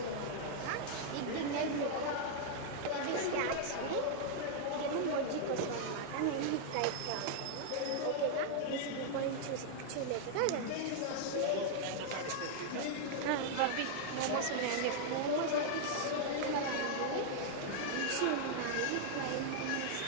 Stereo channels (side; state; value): both; different; correlation 0.00